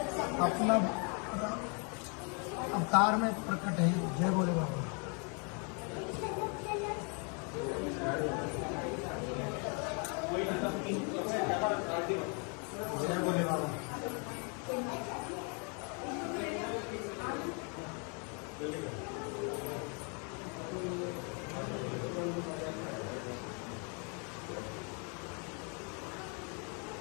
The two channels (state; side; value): quieter; right; 36.4 dB